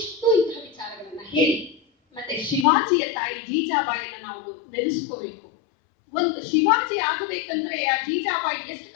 ಇಂತಹ ವಿಚಾರಗಳನ್ನ ಹೇಳಿ. ಮತ್ತೆ ಶಿವಾಜಿಯ ತಾಯಿ ಜೀಜಾಬಾಯಿಯನ್ನ ನಾವು ನೆನೆಸ್ಕೋಬೇಕು. ಒಂದು ಶಿವಾಜಿ ಆಗಬೇಕಂದ್ರೆ ಆ ಜೀಜಾಬಾಯಿ ಎಷ್ಟು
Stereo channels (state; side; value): drops out; right; at 2.7 s